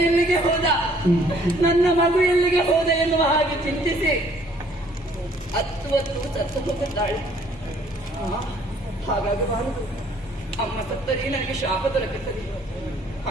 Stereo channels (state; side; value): normal; both; correlation 0.60